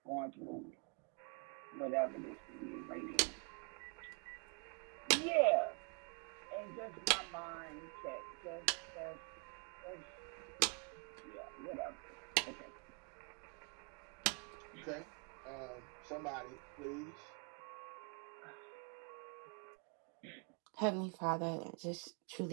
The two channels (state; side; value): quieter; left; 37.8 dB